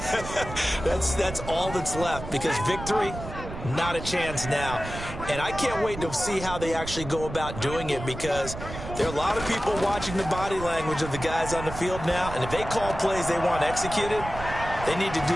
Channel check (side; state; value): right; noise; rumble, 10 dB below the sound